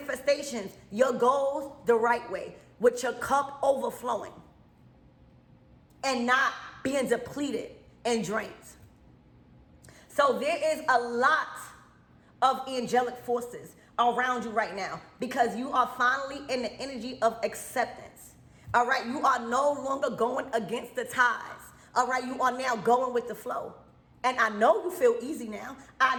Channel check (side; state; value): both; identical; correlation 1.00